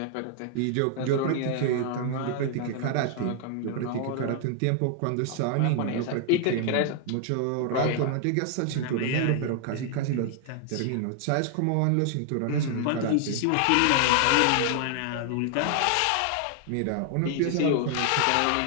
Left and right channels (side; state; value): both; different; correlation 0.00